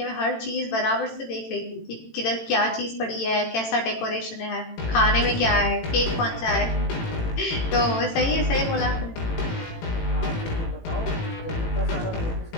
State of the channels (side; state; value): right; late; 18 ms